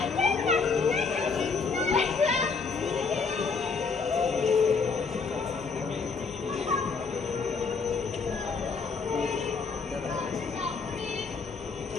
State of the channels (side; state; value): right; quieter; 4.9 dB